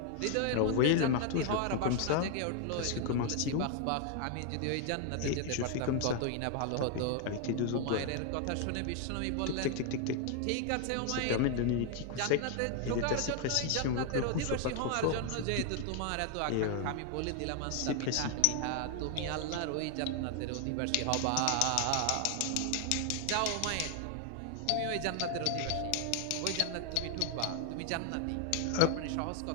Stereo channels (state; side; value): different; both; correlation 0.00